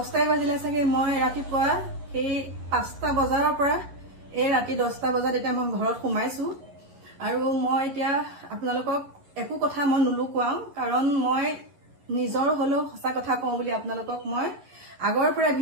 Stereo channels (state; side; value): late; left; 11 ms